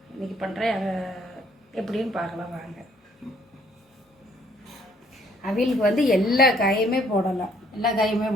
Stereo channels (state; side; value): normal; both; correlation 0.63